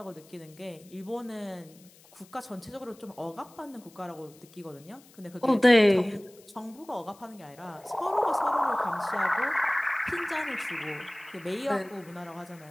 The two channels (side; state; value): left; noise; hiss, 25 dB below the sound